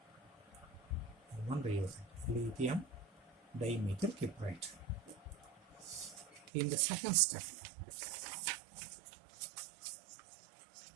Gilman reagent, lithium dimethyl cuprate. In the second step,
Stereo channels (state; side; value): drops out; left; at 6.5 s